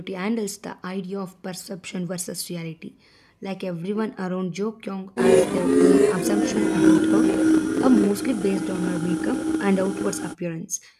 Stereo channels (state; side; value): identical; both; correlation 1.00